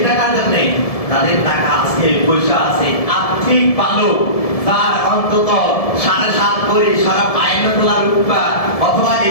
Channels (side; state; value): right; late; 1.7 ms